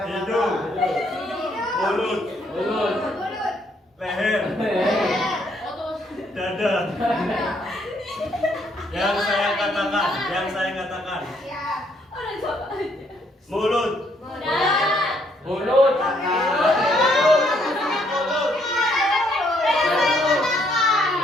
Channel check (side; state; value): both; normal; correlation 0.70